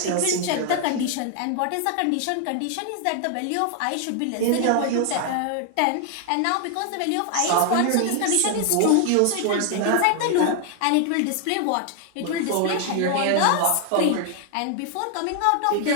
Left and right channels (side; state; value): both; different; correlation 0.00